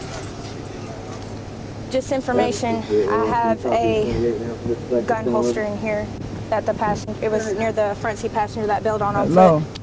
Just information, I have a gun holster in here that the passenger, it was near the front seat passenger that bailed on Hello.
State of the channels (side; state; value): both; identical; correlation 1.00